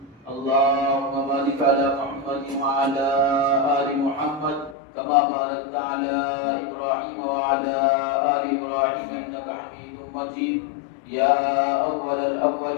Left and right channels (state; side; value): drops out; right; at 4.8 s